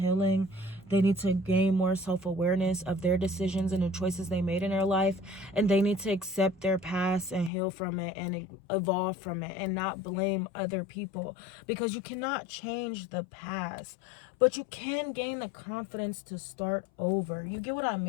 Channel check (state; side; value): drops out; right; at 7.5 s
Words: They need to gain more self-awareness of their decisions and the choices they made in their life. And they need to accept their past and heal from it and evolve from it and not blame other people. Because you cannot change the past, but you can gain the confidence to start over. You get what I